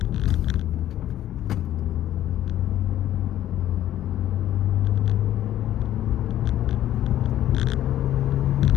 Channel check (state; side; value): quieter; right; 12.5 dB